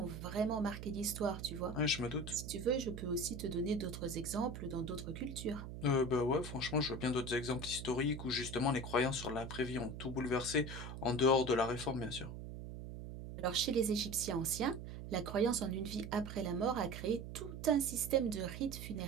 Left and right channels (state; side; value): noise; right; hum, 9 dB below the sound